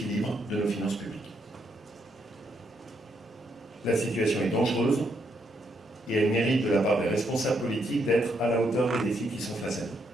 de nos finances publiques. La situation est dangereuse et elle mérite de la part des responsables politiques d'être à la hauteur des défis qui sont face à nous.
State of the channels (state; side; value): normal; both; correlation 0.76